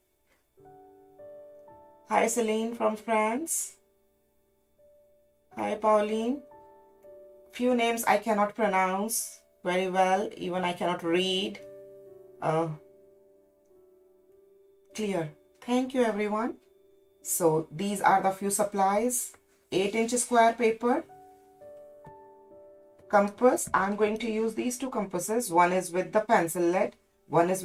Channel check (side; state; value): both; identical; correlation 1.00